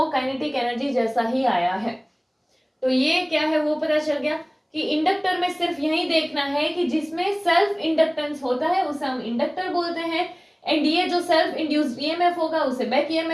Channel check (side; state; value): both; identical; correlation 1.00